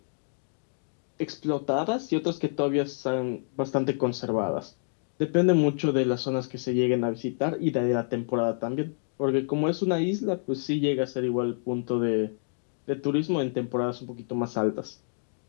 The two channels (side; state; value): right; silent; digital silence